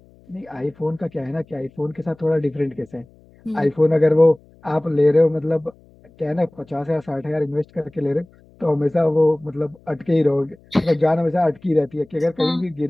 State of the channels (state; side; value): noise; left; hum, 28 dB below the sound